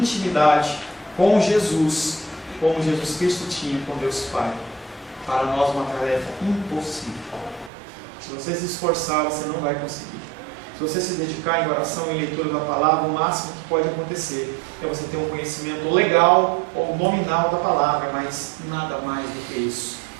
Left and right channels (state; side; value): drops out; left; at 7.7 s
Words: com Jesus, como Jesus Cristo tinha com Deus Pai. Para nós uma tarefa impossível. Se você se esforçar, você não vai conseguir. Se você se dedicar em oração e leitura da palavra, o máximo que pode acontecer é você ter um conhecimento legal ou nominal da palavra, mas nada mais do que isso.